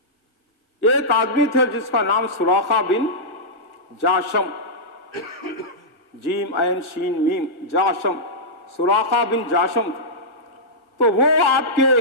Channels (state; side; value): late; right; 1.4 ms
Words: ایک آدمی تھے جس کا نام سراقہ بن جاشم، جیم عین شین میم، جاشم، سراقہ بن جاشم. تو وہ آپ کے